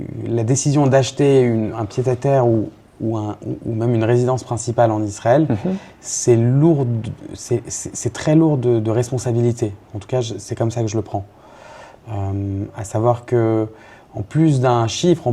la décision d'acheter un pied-à-terre ou même une résidence principale en Israël, c'est très lourd de responsabilité. En tout cas, c'est comme ça que je le prends. À savoir que en plus d'un chiffre, en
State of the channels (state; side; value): identical; both; correlation 1.00